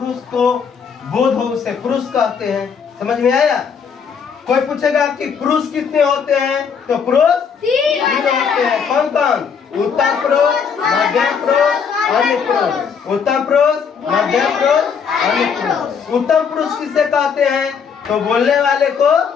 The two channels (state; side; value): quieter; right; 6.5 dB